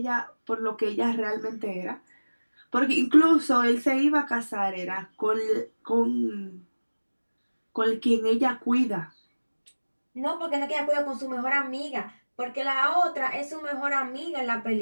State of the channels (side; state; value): both; inverted; correlation -1.00